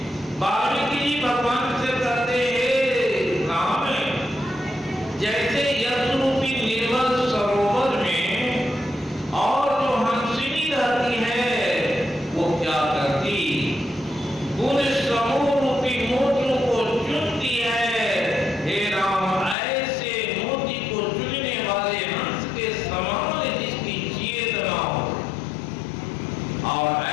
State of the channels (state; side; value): drops out; right; at 19.6 s